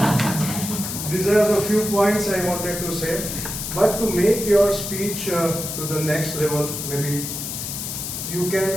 these are the few points I wanted to say. But to make your speech to the next level, maybe you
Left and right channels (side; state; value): left; noise; hiss, 5 dB below the sound